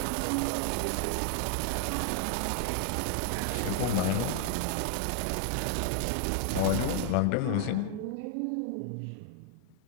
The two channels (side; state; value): both; different; correlation 0.00